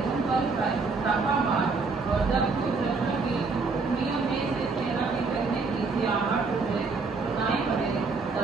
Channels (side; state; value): left; quieter; 4.3 dB